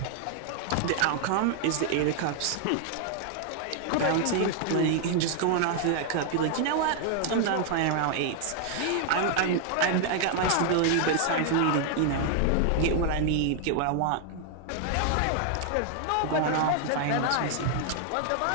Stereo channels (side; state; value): both; different; correlation 0.00